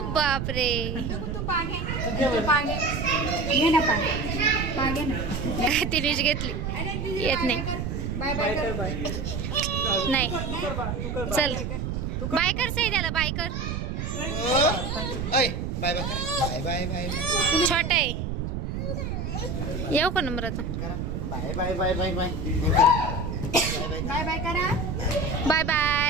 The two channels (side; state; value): right; noise; rumble, 3 dB below the sound